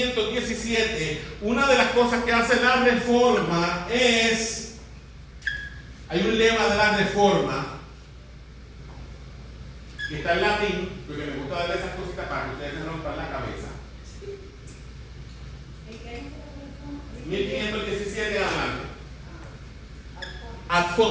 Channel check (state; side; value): identical; both; correlation 1.00